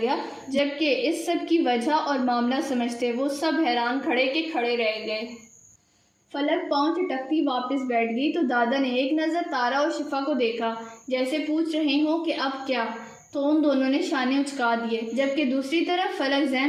گیا، جبکہ اس سب کی وجہ اور معاملہ سمجھتے وہ سب حیران کھڑے کے کھڑے رہ گئے۔ فلک پاؤں چٹکتی واپس بیٹھ گئی تو دادا نے ایک نظر تارا اور شفا کو دیکھا، جیسے پوچھ رہے ہوں کہ اب کیا، تو ان دونوں نے شانے اچکا دیے، جبکہ دوسری طرف فلک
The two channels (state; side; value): identical; both; correlation 1.00